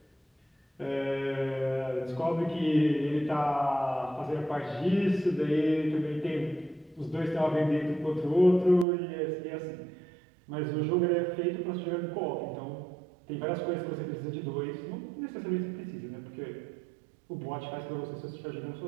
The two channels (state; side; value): drops out; left; at 8.8 s